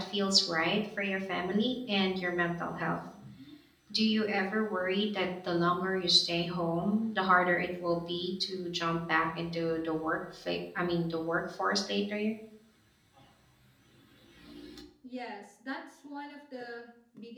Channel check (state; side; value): identical; both; correlation 1.00